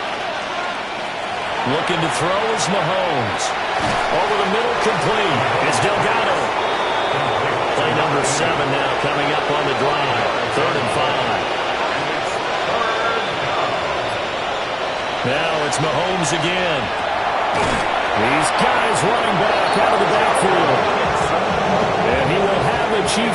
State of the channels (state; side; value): identical; both; correlation 1.00